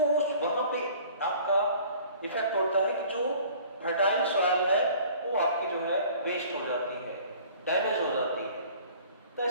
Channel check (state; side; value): inverted; both; correlation -0.50